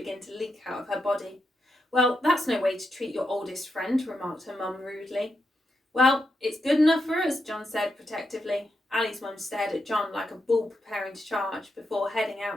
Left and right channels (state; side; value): normal; both; correlation 0.84